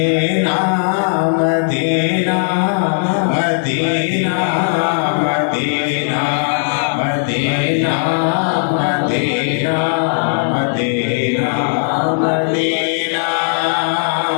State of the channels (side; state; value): right; silent; digital silence